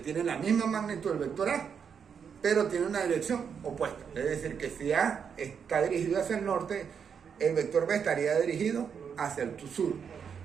la misma magnitud del vector A, pero tiene una dirección opuesta. Es decir, que si A está dirigido hacia el norte, el vector B estaría dirigido hacia el sur.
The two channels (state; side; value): quieter; left; 7.0 dB